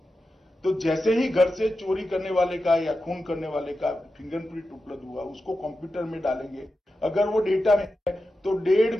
तो जैसे ही घर से चोरी करने वाले का या खून करने वाले का फिंगरप्रिंट उपलब्ध हुआ, उसको कंप्यूटर में डालेंगे। अगर वो डेटा में है तो 1.5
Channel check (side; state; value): both; normal; correlation 0.91